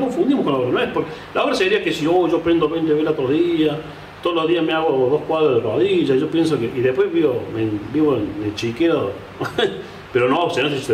con la obra, no es porque la obra sería que si yo prendo 20 velas todos los días, todos los días me hago 2 cuadros de rodillas, yo pienso que... Y después vivo en el chiquero, pero no, si no, si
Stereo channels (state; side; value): identical; both; correlation 1.00